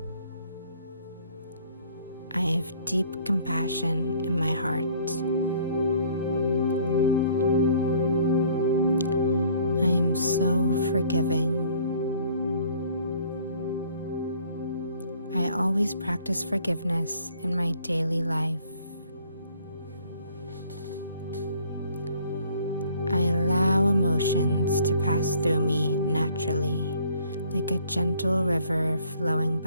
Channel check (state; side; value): inverted; both; correlation -0.58